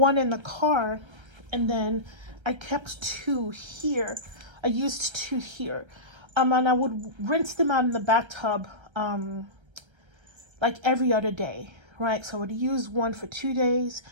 in the car, and then I kept two here. I used two here. And I would rinse them out in the bathtub like every other day. Right, so I would use one for 2 days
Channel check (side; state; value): left; late; 1.3 ms